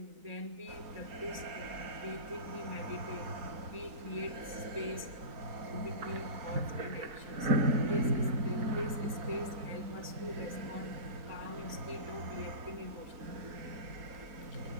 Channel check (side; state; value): left; late; 3.9 ms